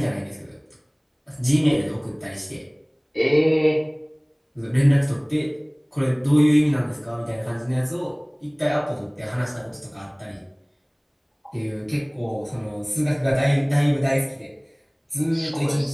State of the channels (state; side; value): identical; both; correlation 1.00